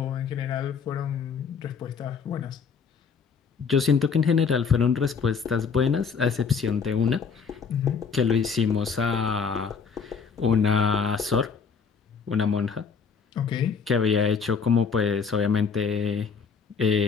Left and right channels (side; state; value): right; quieter; 5.8 dB